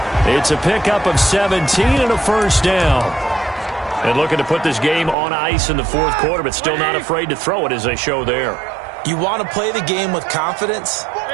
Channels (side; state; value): left; drops out; at 5.2 s